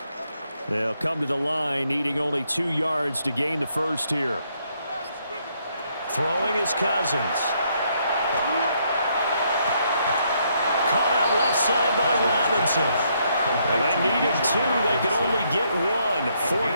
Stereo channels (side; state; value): both; inverted; correlation -0.73